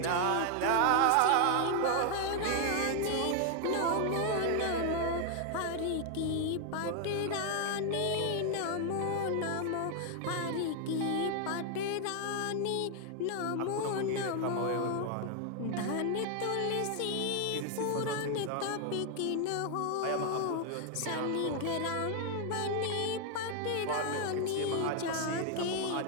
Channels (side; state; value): both; different; correlation 0.00